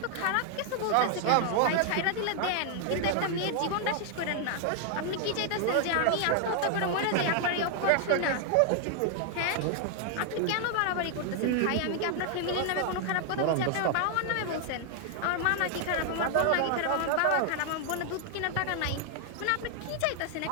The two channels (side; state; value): both; different; correlation 0.00